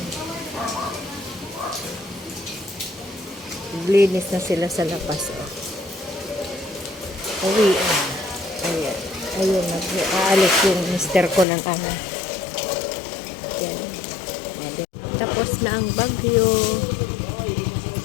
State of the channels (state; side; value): drops out; right; at 11.5 s